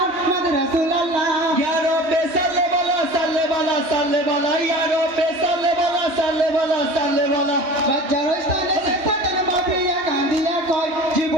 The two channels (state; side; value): late; left; 3.2 ms